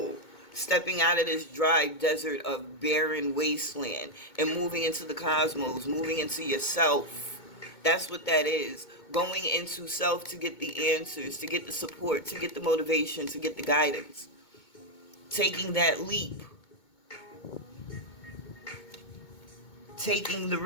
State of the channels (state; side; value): late; right; 2.2 ms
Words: Stepping out of this dry desert of barren wasteland and moving into the cosmos, moving into yourself. That's what that is. Going into self to get the answers, to get the support, to get the motivation, to get the guidance. Taking that leap. Taking the